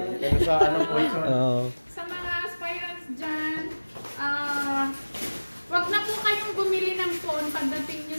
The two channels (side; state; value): both; inverted; correlation -1.00